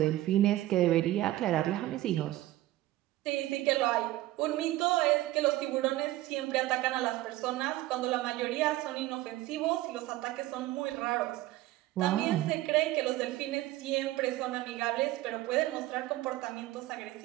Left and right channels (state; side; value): quieter; left; 16.2 dB